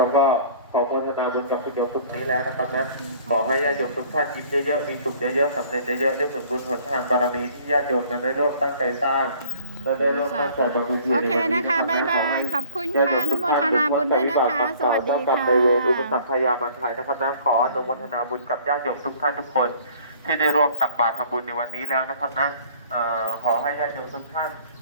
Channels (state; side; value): inverted; both; correlation -0.53